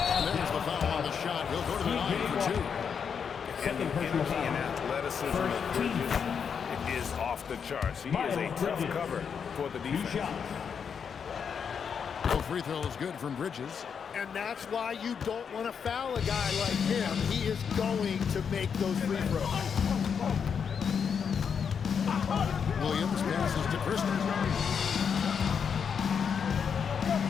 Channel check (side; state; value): right; quieter; 6.8 dB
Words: there's the foul on the shot. He'll go to the line for 2. And the energy and athleticism of Bridges is off the charts. He is a tough cover for the defense. No free throw is good from Bridges. And that's why you don't want to foul a guy like him. He is going to make those free throws. Williams passes to Christie.